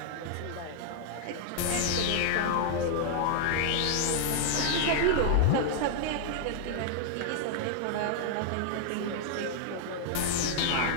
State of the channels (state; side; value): different; both; correlation 0.00